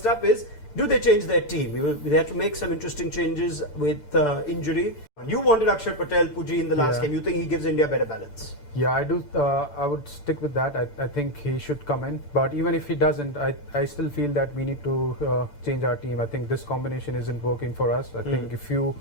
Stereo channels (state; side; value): late; right; 6.8 ms